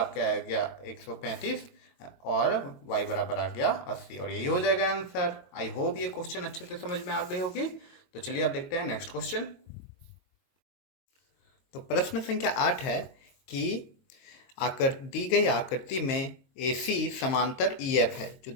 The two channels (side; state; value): right; late; 22 ms